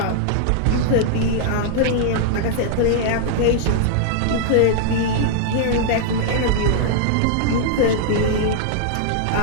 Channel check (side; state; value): both; different; correlation -0.01